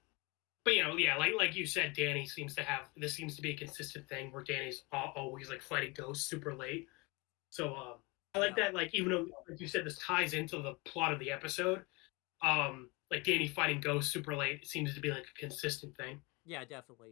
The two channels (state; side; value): quieter; right; 26.7 dB